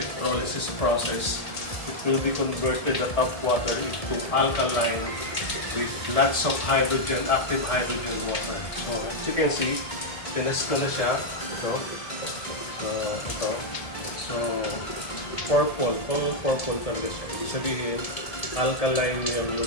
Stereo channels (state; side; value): late; right; 1.7 ms